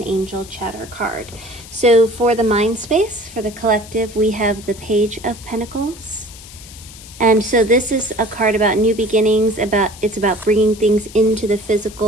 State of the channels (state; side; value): noise; left; hiss, 18 dB below the sound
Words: angel chatter card. So for the mind space, for the collective, we have the Page of Pentacles. And so this is a card about new beginnings, it's about bringing things into the